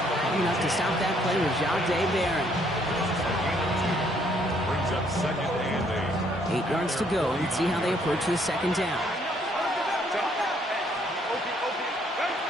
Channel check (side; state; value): both; normal; correlation 0.67